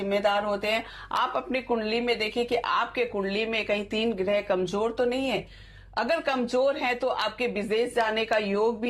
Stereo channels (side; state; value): both; identical; correlation 1.00